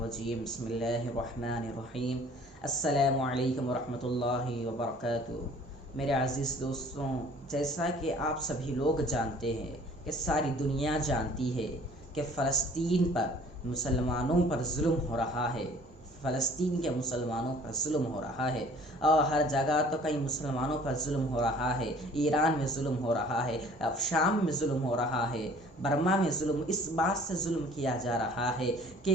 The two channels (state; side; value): normal; both; correlation 0.52